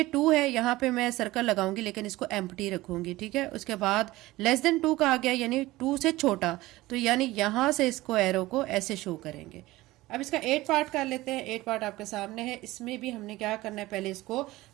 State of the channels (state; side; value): quieter; left; 18.5 dB